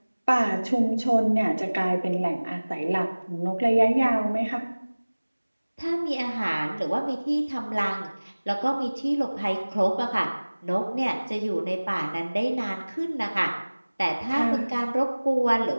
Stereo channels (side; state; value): both; inverted; correlation -1.00